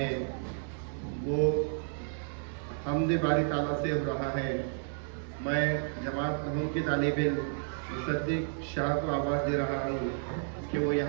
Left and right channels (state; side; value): silent; left; digital silence